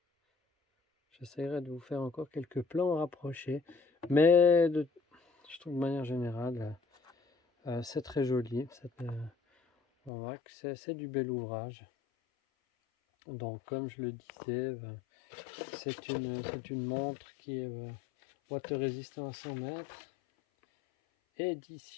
J'essaierai de vous faire encore quelques plans rapprochés. Mais je trouve de manière générale, c'est très joli. On voit que c'est du bel ouvrage. Donc, comme je le disais, c'est une montre qui est water résistant à 100 mètres.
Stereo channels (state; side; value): drops out; right; at 10.1 s